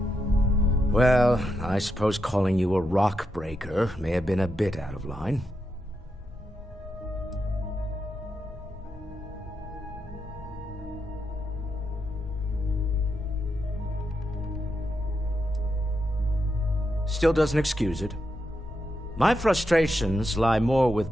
Well, I suppose calling you a rock breaker may have been a bit out of line. Still doesn't excuse it. My frustrations lie more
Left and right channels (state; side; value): normal; both; correlation 0.84